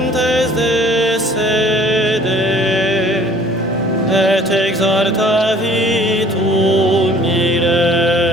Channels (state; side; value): normal; both; correlation 0.53